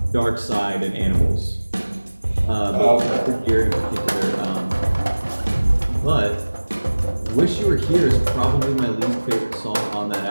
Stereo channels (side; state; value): both; inverted; correlation -1.00